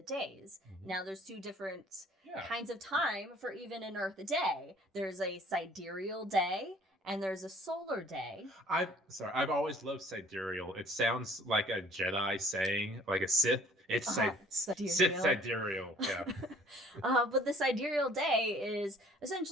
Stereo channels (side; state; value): both; normal; correlation 0.54